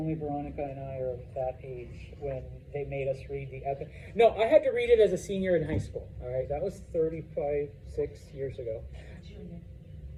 Veronica and I are of that age when they made us read the epic. No, I had to read it as a senior in high school. All right, that was 6 years ago. Junior.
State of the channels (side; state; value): both; identical; correlation 1.00